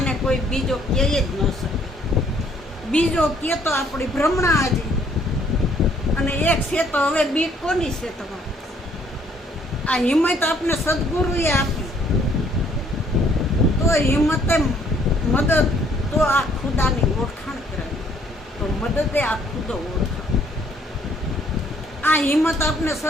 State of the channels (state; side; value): normal; both; correlation 0.64